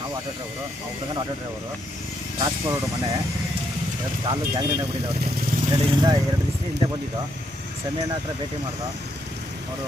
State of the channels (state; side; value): normal; both; correlation 0.76